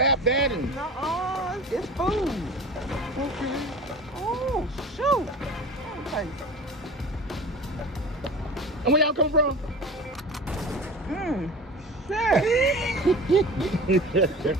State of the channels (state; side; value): normal; both; correlation 0.36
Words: that and. Nuh-uh, it's food. Okay. Oh, shoot. Okay. And where y'all come from? Shit.